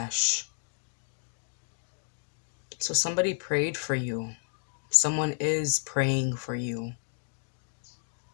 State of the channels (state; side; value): silent; right; digital silence